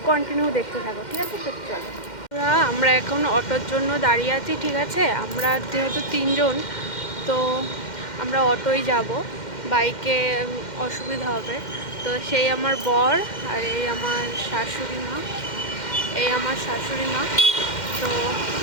কন্টিনিউ দেখতে থাকো, ঠিক আছে? তো চলো, আমরা এখন অটোর জন্য দাঁড়িয়ে আছি, ঠিক আছে? আমরা যেহেতু 3 জন, তো আমরা অটোই যাব, বাইকে অসুবিধা হবে। তো সেই আমার বর আর এই আমার শাশুড়ি মা, তো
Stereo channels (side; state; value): right; late; 2.1 ms